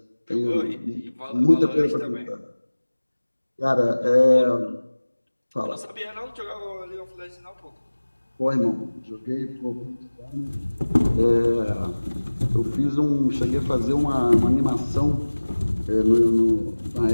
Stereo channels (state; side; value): inverted; both; correlation -1.00